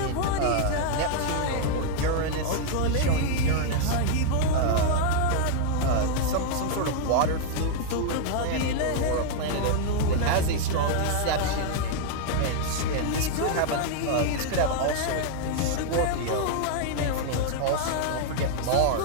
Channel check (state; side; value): different; both; correlation 0.00